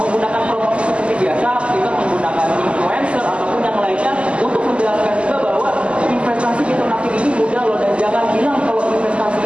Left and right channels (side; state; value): left; late; 0.056 ms